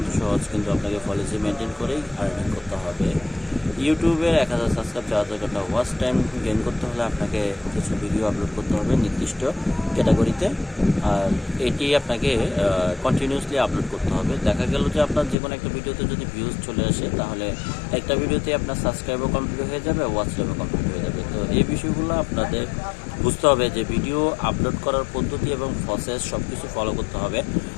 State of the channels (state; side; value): drops out; right; at 15.4 s